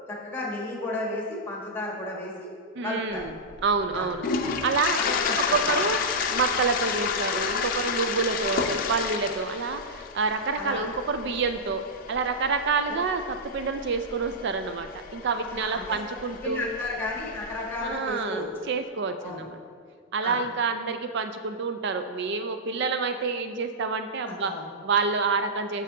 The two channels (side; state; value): both; normal; correlation -0.10